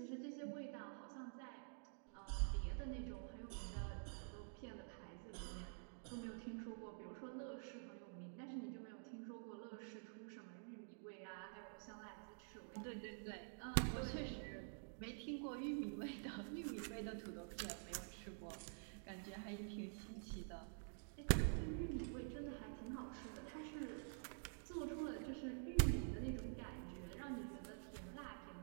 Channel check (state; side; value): silent; left; digital silence